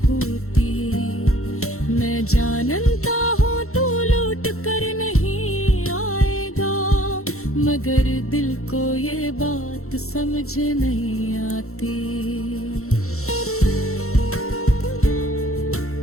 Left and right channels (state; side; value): late; right; 0.63 ms